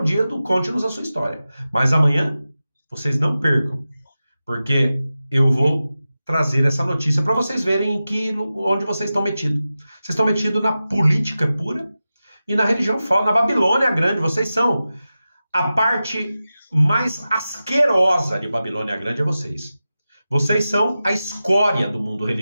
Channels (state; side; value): inverted; both; correlation -0.94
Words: dia do Conte-nos a Sua História. Mas amanhã, vocês não percam, porque eu vou trazer essa notícia para vocês verem onde vocês estão metidos. Vocês estão metidos na política pura e na religião falsa, na Babilônia Grande. Vocês são a parte mais asquerosa de Babilônia Grande, é vocês. Vocês são a escória do mundo